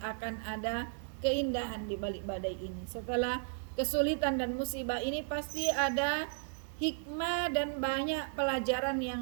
ada keindahan di balik badai ini. Setelah kesulitan dan musibah ini pasti ada hikmah dan banyak pelajaran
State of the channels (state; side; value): silent; left; digital silence